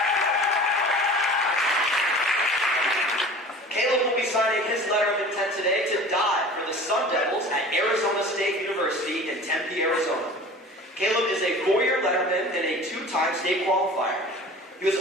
letterman and a two-time state qualifier. He was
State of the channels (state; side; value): normal; both; correlation 0.41